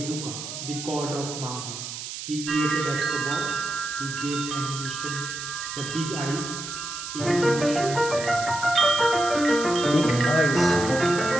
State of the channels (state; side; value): noise; right; hiss, 8 dB below the sound